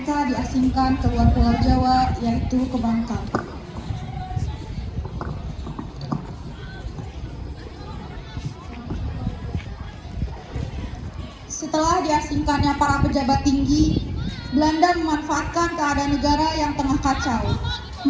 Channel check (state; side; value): identical; both; correlation 1.00